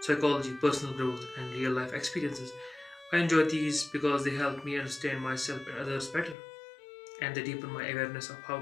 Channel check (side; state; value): right; drops out; at 6.4 s